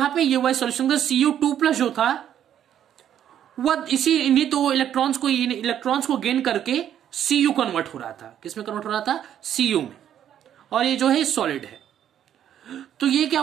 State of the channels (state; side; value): quieter; left; 10.2 dB